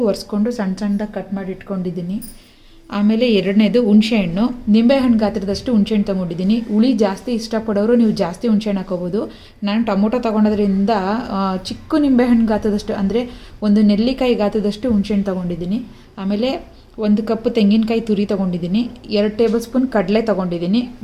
ಒರೆಸ್ಕೊಂಡು ಸಣ್ಣ ಸಣ್ಣದಾಗಿ ಕಟ್ ಮಾಡಿ ಇಟ್ಕೊಂಡಿದ್ದೀನಿ. ಆಮೇಲೆ ಎರಡನೇದು ಹುಣಸೆಹಣ್ಣು, ನಿಂಬೆಹಣ್ಣು ಗಾತ್ರದಷ್ಟು ಹುಣಸೆಹಣ್ಣು ತೊಗೊಂಡಿದ್ದೀನಿ. ಹುಳಿ ಜಾಸ್ತಿ ಇಷ್ಟಪಡೋರು ನೀವು ಜಾಸ್ತಿ ಹುಣಸೆಹಣ್ಣು ಹಾಕೋಬೋದು. ನಾನು ಟೊಮೊಟೊ ತೊಗೊಳೋದ್ರಿಂದ ಚಿಕ್ಕ ನಿಂಬೆಹಣ್ಣು ಗಾತ್ರದಷ್ಟು ಅಂದರೆ ಒಂದು ನೆಲ್ಲಿಕಾಯಿ ಗಾತ್ರದಷ್ಟು ಹುಣಸೆಹಣ್ಣು ತೊಗೊಂಡಿದ್ದೀನಿ. ಆಮೇಲೆ 1 ಕಪ್ ತೆಂಗಿನಕಾಯಿ ತುರಿ ತೊಗೊಂಡಿದ್ದೀನಿ, 2 ಟೇಬಲ್ ಸ್ಪೂನ್ ಕಡಲೆ ತೊಗೊಂಡಿದ್ದೀನಿ,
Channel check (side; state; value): both; identical; correlation 1.00